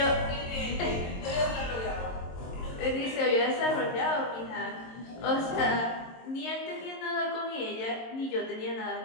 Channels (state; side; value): late; right; 22 ms